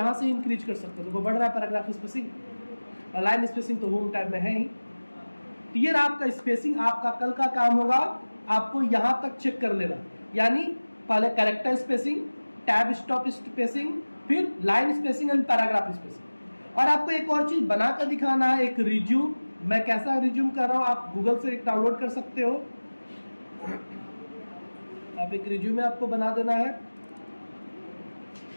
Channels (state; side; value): inverted; both; correlation -1.00